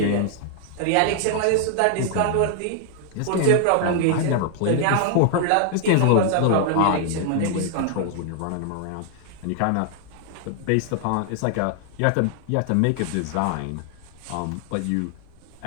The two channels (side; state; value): both; different; correlation 0.00